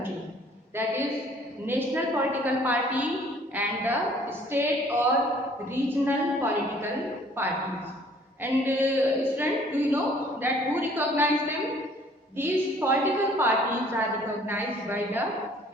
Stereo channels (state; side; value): normal; both; correlation 0.57